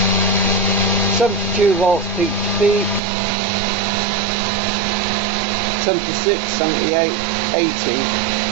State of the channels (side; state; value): left; drops out; at 3.0 s